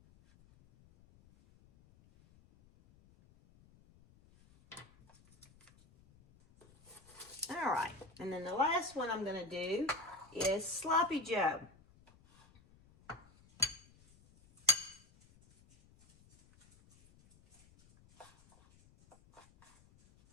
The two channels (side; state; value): left; noise; rumble, 27 dB below the sound